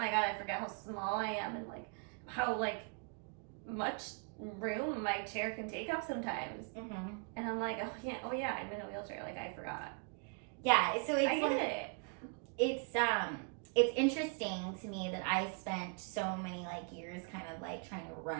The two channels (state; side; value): quieter; left; 37.9 dB